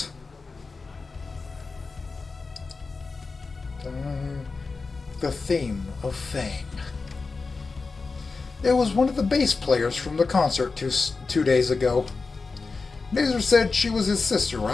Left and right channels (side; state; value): right; quieter; 4.2 dB